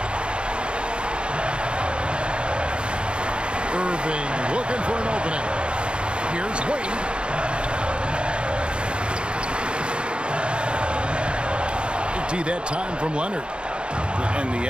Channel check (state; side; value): late; left; 0.055 ms